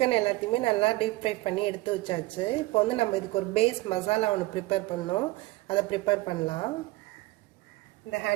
எல்லாத்தையுமே நல்லா டீப் ஃப்ரை பண்ணி எடுத்து வச்சாச்சு. இப்போ வந்து நம்ம இதுக்கு ஒரு பேஸ் மசாலா ஒன்று ப்ரிப்பேர் பண்ணோம். அதை ப்ரிப்பேர் பண்ணலாம். இந்த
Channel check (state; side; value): quieter; left; 20.0 dB